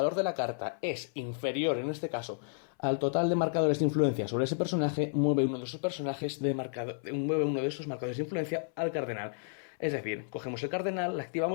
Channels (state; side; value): silent; right; 57 dB below the other